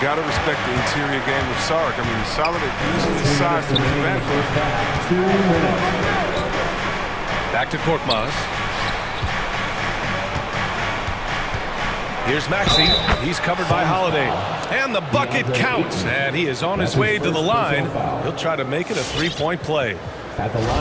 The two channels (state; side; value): identical; both; correlation 1.00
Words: got to respect the interior game of Saric. I mean, he's solid at using his size to his advantage. Back to Korkmaz. Here's Maxey. He's covered by Holiday. And the bucket counts. And he is on his way to the line. He'll try to make it a three-point play. At the